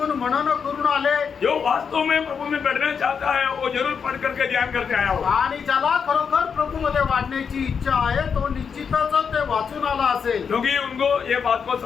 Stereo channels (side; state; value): right; quieter; 6.4 dB